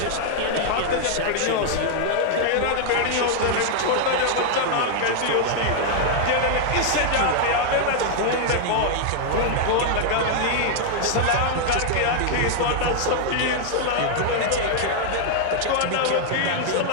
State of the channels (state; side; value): different; both; correlation 0.00